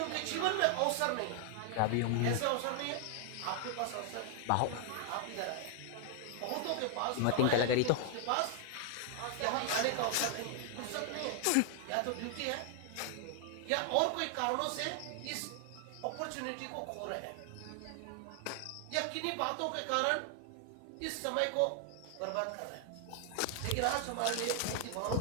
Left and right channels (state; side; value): different; both; correlation 0.00